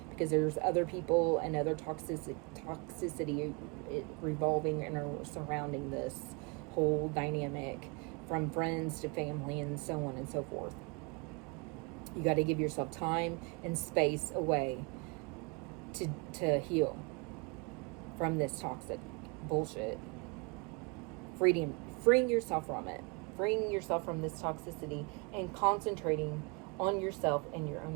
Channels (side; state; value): left; quieter; 31.4 dB